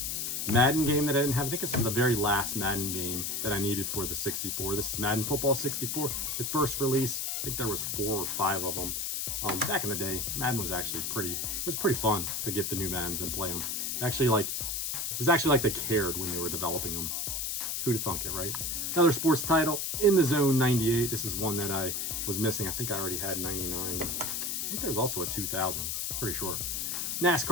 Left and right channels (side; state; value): left; noise; hiss, 1 dB below the sound